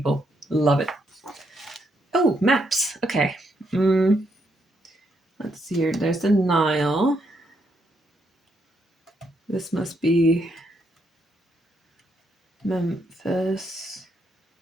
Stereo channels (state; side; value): normal; both; correlation 0.77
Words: Love it. Oh, maps. Okay. Let's see here. There's the Nile. This must be Memphis.